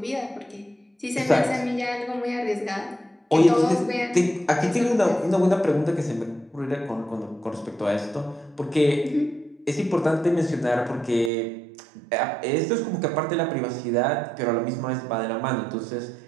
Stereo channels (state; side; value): drops out; left; at 11.3 s